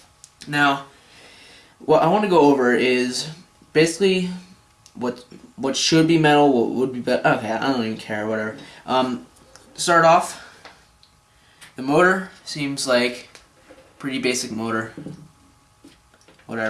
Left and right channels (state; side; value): identical; both; correlation 1.00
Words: Now, what I want to go over is basically what should be metal, what would be better. Okay, I don't even care, whatever. To start off, the motor seems like pretty basic motor.